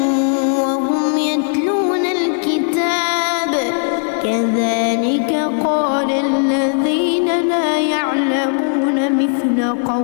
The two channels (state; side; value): silent; right; digital silence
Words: وهم يتلون الكتاب كذلك قال الذين لا يعلمون مثل